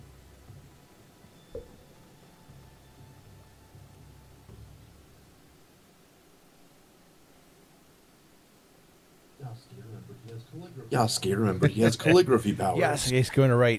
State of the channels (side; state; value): both; identical; correlation 1.00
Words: Yasuke, remember, he has calligraphy powers. Yasuke's going to